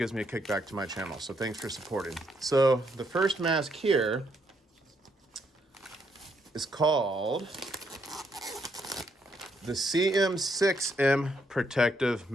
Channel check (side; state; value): both; normal; correlation 0.74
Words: me a kickback to my channel. So thanks for supporting. So the first mask here is called the CM6M Protective